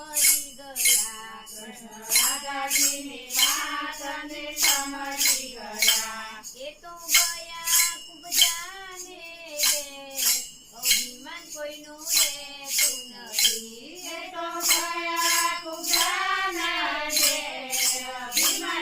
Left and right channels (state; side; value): identical; both; correlation 1.00